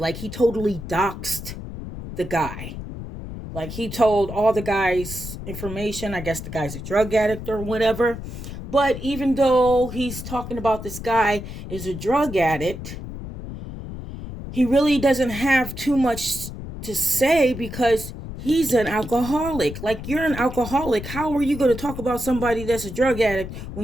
he totally doxed the guy. Like he told all the guy's information. I guess the guy's a drug addict or whatever. But even though he's talking about this guy is a drug addict, he really doesn't have too much to say because he's an alcoholic. Like, you're an alcoholic. How are you going to talk about somebody that's a drug addict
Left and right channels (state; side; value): noise; left; rumble, 9 dB below the sound